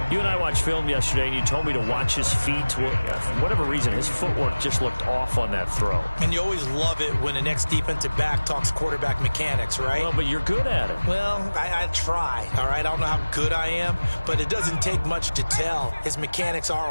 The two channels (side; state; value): both; inverted; correlation -1.00